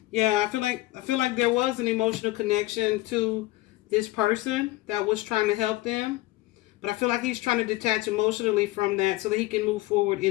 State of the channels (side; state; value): right; quieter; 18.6 dB